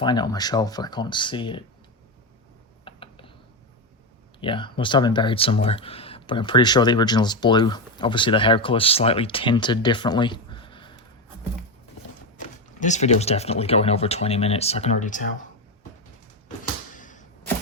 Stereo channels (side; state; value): both; normal; correlation 0.13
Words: it on my shelf, but I can't see it. Yeah, must have been buried somewhere. But I'm pretty sure the original is blue. Obviously, the hair color is slightly tinted differently. This video is definitely going over 20 minutes, I can already tell.